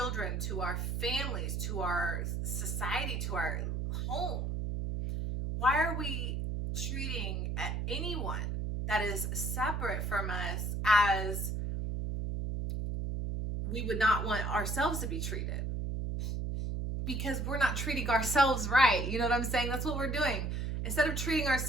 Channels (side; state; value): right; noise; hum, 2 dB below the sound